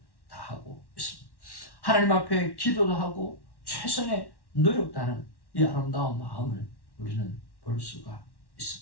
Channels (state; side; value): late; right; 1.1 ms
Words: 다하고 있습니다. 하나님 앞에 기도도 하고 최선의 노력다는 이 아름다운 마음을 우리는 볼 수가